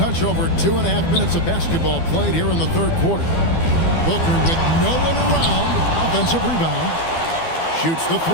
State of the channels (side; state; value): right; late; 12 ms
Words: over 2.5 minutes of basketball played here in the third quarter. Booker with no one around, offensive rebound, shoots the